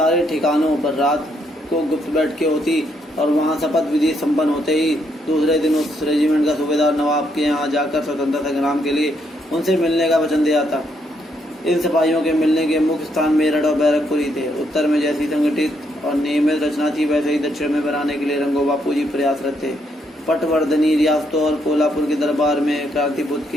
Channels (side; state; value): both; normal; correlation 0.75